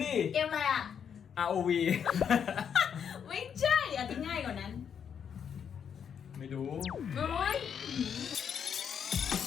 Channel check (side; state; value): right; quieter; 7.7 dB